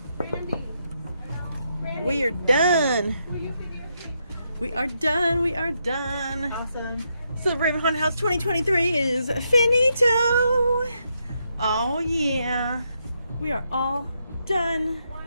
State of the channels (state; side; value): inverted; both; correlation -0.80